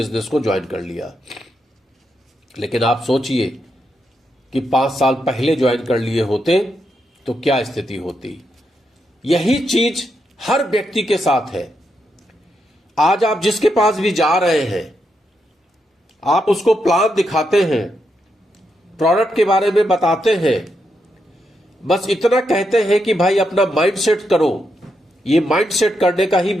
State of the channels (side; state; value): both; normal; correlation 0.82